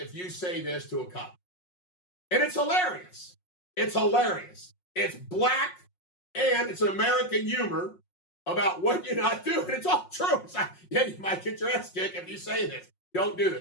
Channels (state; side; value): late; right; 5.5 ms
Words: you say this to a cop. And it's hilarious. It's hilarious. It's black, and it's an American humor about what you're not doing. It's all true. It's like, yeah, you might get your ass kicked if you say this. Don't do